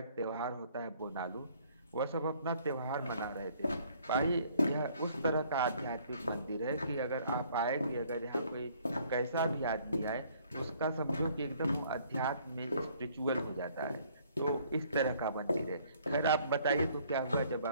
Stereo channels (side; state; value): both; inverted; correlation -0.60